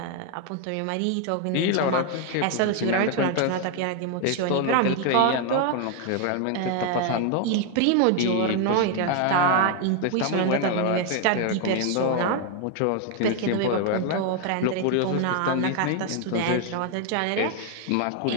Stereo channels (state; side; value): different; both; correlation 0.00